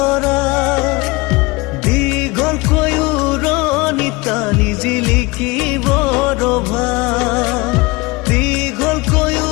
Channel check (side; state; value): right; quieter; 23.8 dB